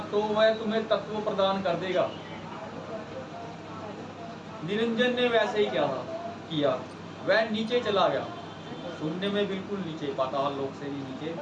तो वह तुम्हें तत्व प्रदान कर देगा। निरंजन ने वैसे ही किया, वह नीचे चला गया, शून्य में बिल्कुल नीचे, पाताल लोक से भी नीचे,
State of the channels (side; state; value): both; identical; correlation 1.00